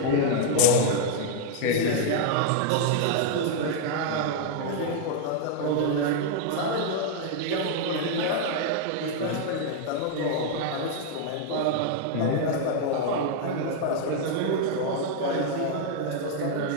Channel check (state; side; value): different; both; correlation -0.01